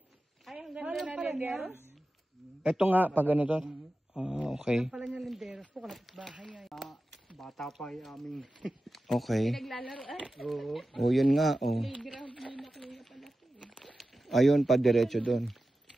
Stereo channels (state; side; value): normal; both; correlation 0.94